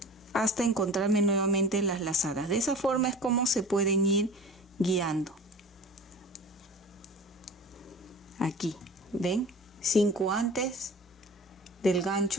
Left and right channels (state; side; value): normal; both; correlation 0.40